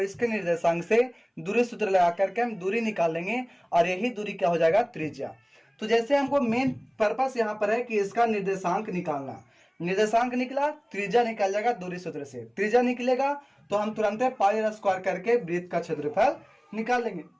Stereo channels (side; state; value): both; identical; correlation 1.00